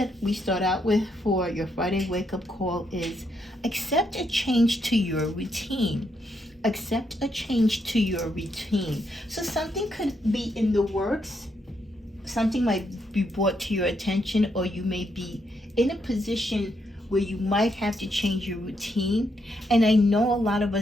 we start out with for your Friday wake-up call is accept a change to your routine. Accept a change to your routine. So something could be in the works, something might be brought to your attention, or you may be in a position where you might have to change your routine. And I know a lot of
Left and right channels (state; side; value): normal; both; correlation 0.78